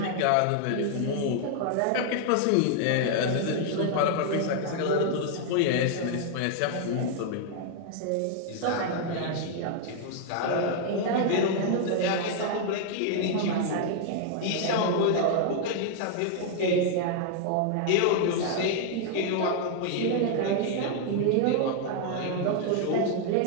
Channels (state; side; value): different; both; correlation 0.00